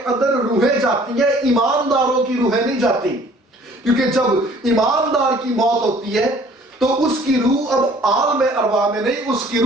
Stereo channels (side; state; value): both; normal; correlation 0.54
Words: اندر روحیں جاتی ہیں، ایمانداروں کی روحیں نہیں جاتی، کیونکہ جب ایماندار کی موت ہوتی ہے تو اس کی روح اب عالم ارواح میں نہیں، اس کی